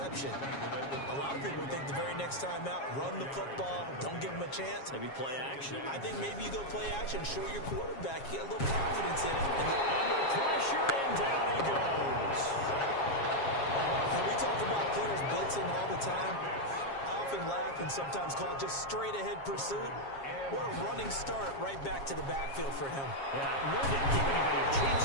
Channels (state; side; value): late; right; 7.3 ms